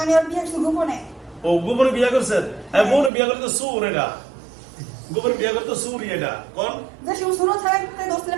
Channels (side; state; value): left; drops out; at 3.1 s